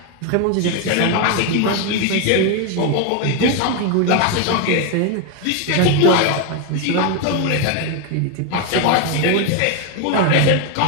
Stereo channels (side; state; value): both; different; correlation 0.01